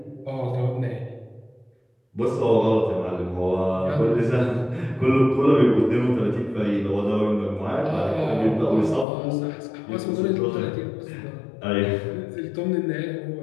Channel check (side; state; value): right; drops out; at 9.1 s